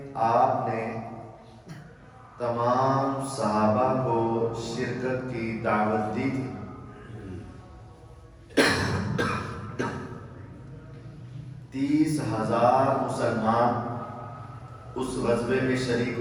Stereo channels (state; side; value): identical; both; correlation 1.00